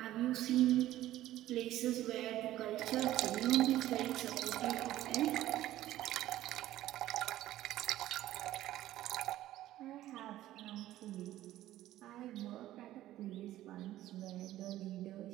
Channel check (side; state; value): left; quieter; 14.3 dB